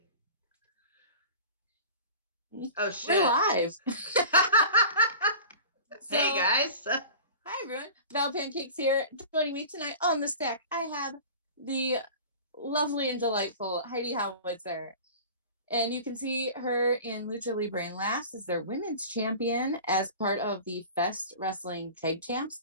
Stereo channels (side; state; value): both; inverted; correlation -0.38